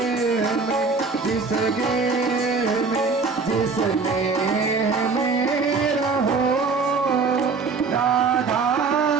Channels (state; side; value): quieter; left; 4.5 dB